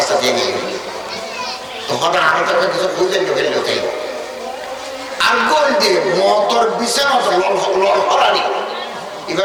দিয়ে নিয়ে তো হঠাৎ আরো তাকে কিছু খুঁজে নিয়ে ফেললো তাই আর গোল দিয়ে মতর বিছানা লল হরানি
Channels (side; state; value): both; identical; correlation 1.00